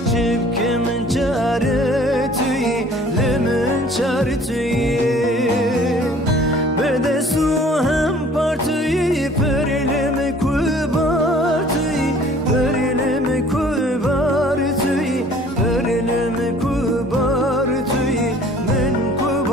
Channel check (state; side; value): normal; both; correlation 0.52